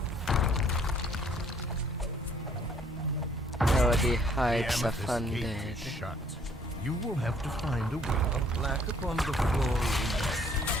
Oh, the The heights of amethyst gate undead. is shut. You will have to find a way. A plaque upon the floor reads,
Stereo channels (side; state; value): both; normal; correlation 0.61